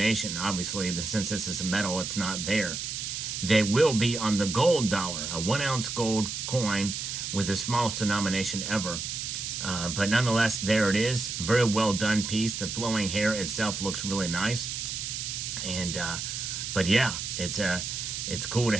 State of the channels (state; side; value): noise; right; hiss, 4 dB below the sound